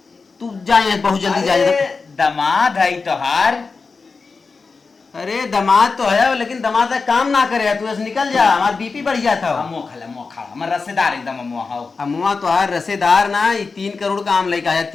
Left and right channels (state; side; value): quieter; right; 4.5 dB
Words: तू जाए बहुत जल्दी जा। दमाद है तोहार। अरे दामाद तो है लेकिन दामाद का काम ना करे, तू ऐसे निकल जा, हमारा बीपी बढ़ जाता हो। मोखा हमार रसेदार एकदम अमुआ तो है रसेदार ना, 3 करोड़ का आम लेके आया